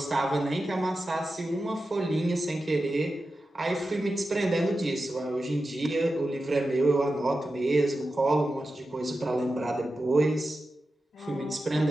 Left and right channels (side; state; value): both; normal; correlation 0.92